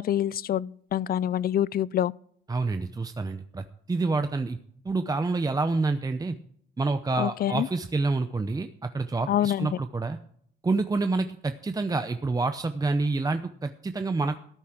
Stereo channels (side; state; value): both; normal; correlation 0.66